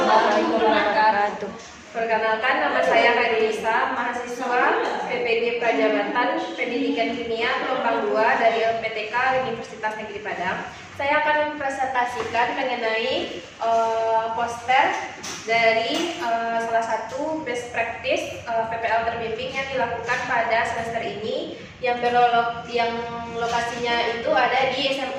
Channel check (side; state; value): both; identical; correlation 1.00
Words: wabarakatuh. Perkenalkan, nama saya Kadisa, mahasiswa PPG Prajabatan Pendidikan Kimia Gelombang 2 dari LPTK Universitas Negeri Padang. Saya akan mempresentasikan mengenai poster dari salah satu best practice PPL terbimbing yang dilakukan pada semester ini yang lokasinya itu ada di